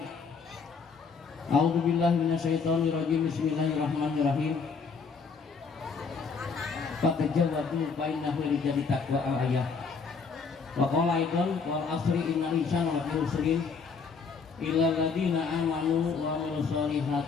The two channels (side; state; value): right; quieter; 5.2 dB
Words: A'udzu billahi minasyaitonir rajim. Bismillahirrahmanirrahim. Fatajawadu bainahu lijadi taqwa al-ayah. Wa qala aidan wal asri innal insana lafi khusrin illa alladziina aamanu wa 'amilus